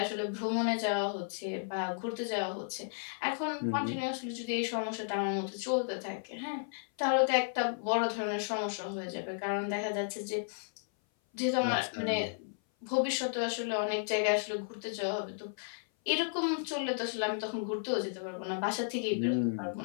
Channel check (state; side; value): silent; right; 55 dB below the other